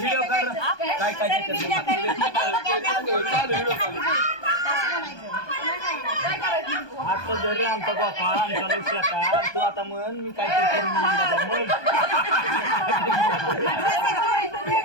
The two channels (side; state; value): right; late; 1.2 ms